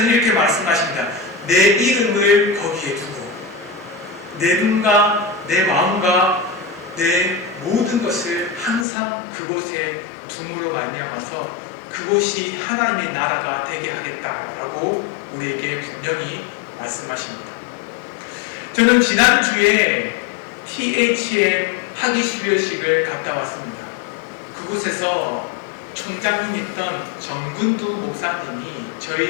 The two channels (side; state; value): right; drops out; at 8.8 s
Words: 이렇게 말씀하십니다. 내 이름을 거기에 두고 내 눈과 내 마음과 내 모든 것을 항상 그곳에 둠으로 말미암아서 그곳이 하나님의 나라가 되게 하겠다라고 우리에게 분명히 말씀하십니다. 저는 지난주에 THM 학위 수료식을 갔다 왔습니다. 그곳에서 총장님이었던 정근두 목사님이